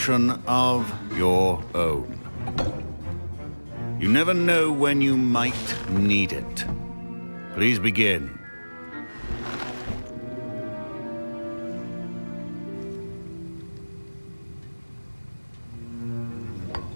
of your own. You never know when you might need it. Please begin.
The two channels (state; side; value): inverted; both; correlation -1.00